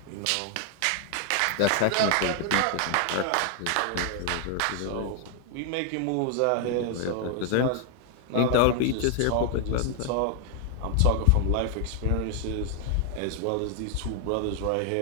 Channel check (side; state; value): both; different; correlation 0.00